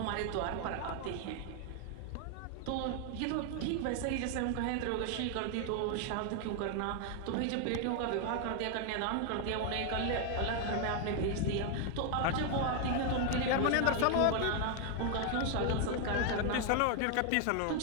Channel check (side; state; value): both; different; correlation 0.01